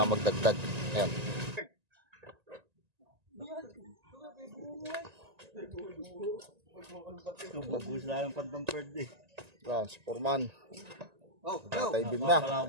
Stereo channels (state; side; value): late; left; 1.9 ms